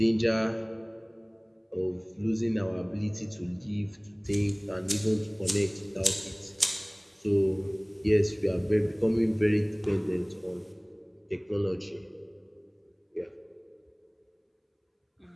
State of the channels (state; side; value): identical; both; correlation 1.00